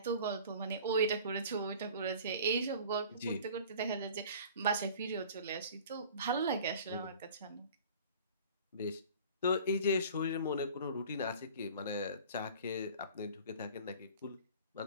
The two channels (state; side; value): inverted; both; correlation -0.45